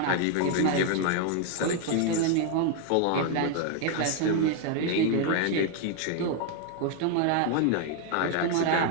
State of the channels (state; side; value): different; both; correlation 0.00